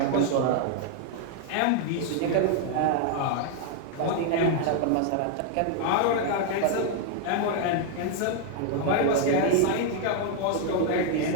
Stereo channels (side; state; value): both; different; correlation 0.00